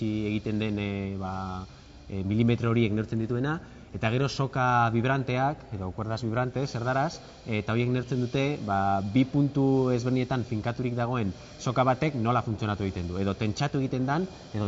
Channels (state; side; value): identical; both; correlation 1.00